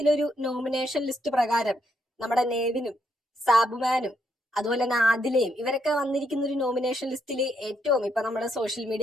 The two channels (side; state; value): both; normal; correlation 0.76